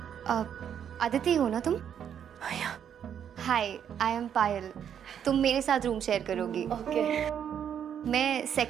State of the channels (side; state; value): left; quieter; 8.8 dB